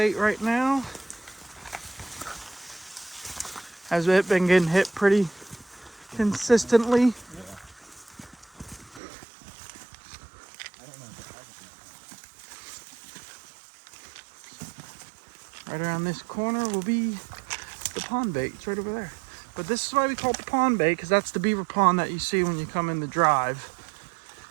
right now. Has it been getting hit pretty consistently? Right around this corner will be the pond bait. It's right over there. But this is why we call it the pond bait, because that's the beaver pond that you see when you come in the drive.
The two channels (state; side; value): drops out; left; at 9.0 s